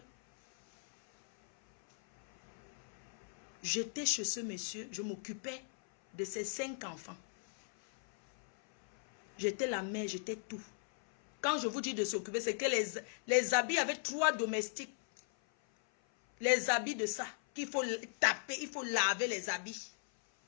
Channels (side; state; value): right; silent; 53 dB below the other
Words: j'étais chez ce monsieur, je m'occupais de ses 5 enfants. J'étais la mère, j'étais tout. Quand je vous dis de s'occuper, c'est que les habits avaient 3 domestiques. Les habits de ça, qu'il faut taper, il faut laver les habits.